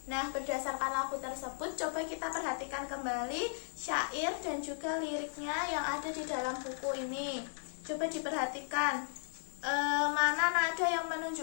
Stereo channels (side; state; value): right; silent; digital silence